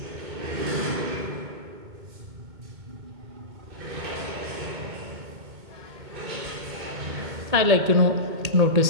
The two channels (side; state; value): left; late; 2.2 ms